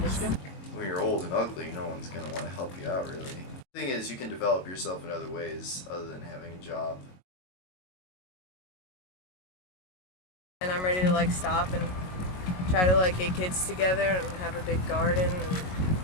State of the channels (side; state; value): right; late; 22 ms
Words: When you're old and ugly, no one's going to want to help you out, really. The thing is, you can develop yourself in other ways other than having a job. And I'm ready to like stop and try to like get kids together and have a big garden and